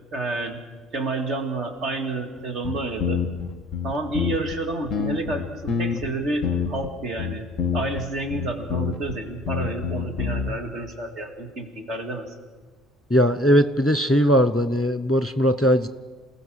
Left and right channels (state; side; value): normal; both; correlation 0.53